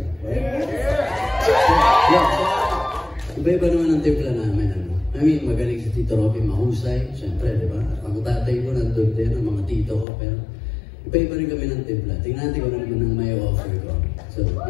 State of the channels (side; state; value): right; drops out; at 10.1 s